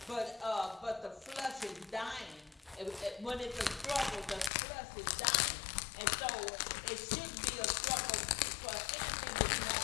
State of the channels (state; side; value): drops out; right; at 4.5 s